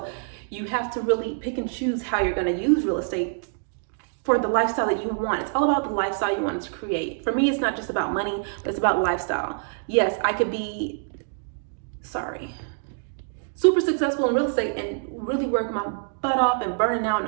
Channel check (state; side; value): silent; left; digital silence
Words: you have to really pick and choose how you're going to use real estate for the lifestyle that you want. It's all about the lifestyle you want to create. For me, it's not just about money, but it's about lifestyle. Yes, I could be, super successful in real estate and really work my butt off and burning out